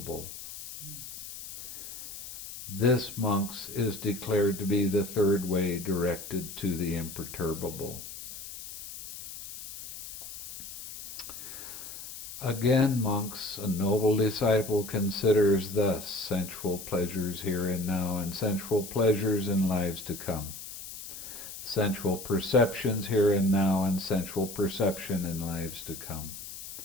This, monks, is declared to be the third way directed to the imperturbable. Again, monks, a noble disciple considers thus sensual pleasures here and now and sensual pleasures in lives to come. Sensual perceptions here and now and sensual perception in lives to come.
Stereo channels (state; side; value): noise; left; hiss, 11 dB below the sound